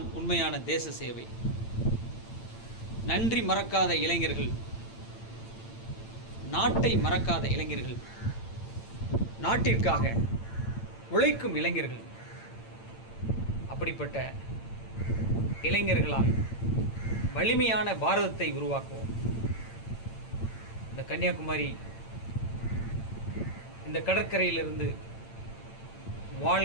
உண்மையான தேச சேவை. நன்றி மறக்காத இளைஞர்கள், நாட்டை மறக்காத இளைஞர்கள், நாட்டிற்காக உழைக்கும் இளைஞர்கள், அப்படிப்பட்ட இளைஞர்களால் வலிமையான பாரதத்தை உருவாக்குவோம். இந்த கன்னியாகுமரி, இந்த கடற்கரையிலிருந்து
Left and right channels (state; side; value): late; right; 8.9 ms